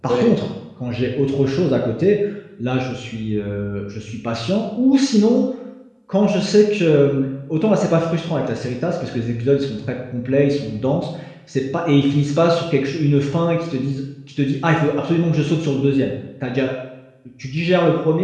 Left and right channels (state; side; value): identical; both; correlation 1.00